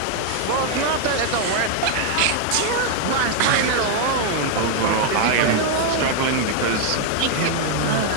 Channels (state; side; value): different; both; correlation 0.00